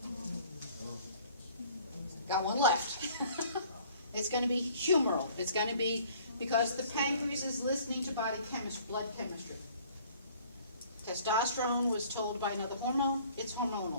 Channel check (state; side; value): inverted; both; correlation -0.54